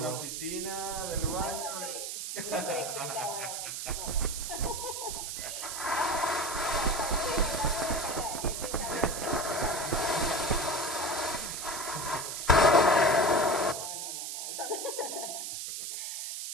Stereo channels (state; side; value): noise; right; hiss, 5 dB below the sound